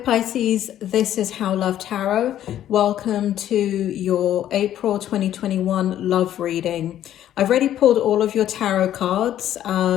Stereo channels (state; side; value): quieter; right; 11.6 dB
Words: this is How Love Tarot. Welcome to your April 2021 love reading. I've already pulled all of your tarot cards.